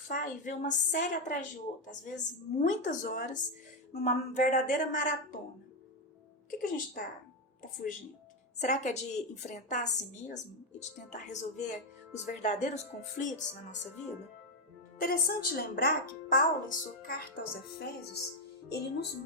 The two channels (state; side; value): normal; both; correlation 0.05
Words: e vê uma série atrás de outra, às vezes muitas horas, numa verdadeira maratona? O que a gente está fugindo? Será que é de enfrentar a si mesmo e de tentar resolver os verdadeiros conflitos na nossa vida? Interessante lembrar que Paulo, em sua carta aos Efésios, ele nos